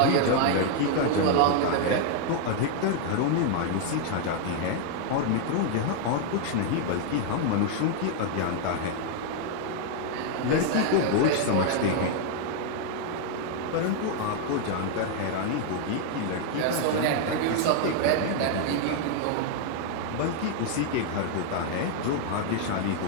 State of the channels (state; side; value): different; both; correlation 0.00